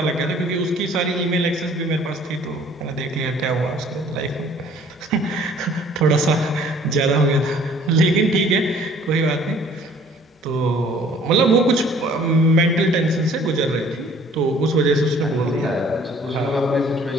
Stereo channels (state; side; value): normal; both; correlation 0.55